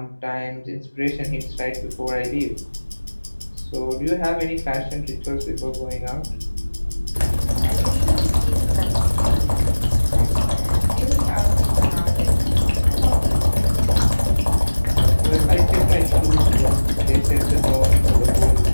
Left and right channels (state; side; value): inverted; both; correlation -1.00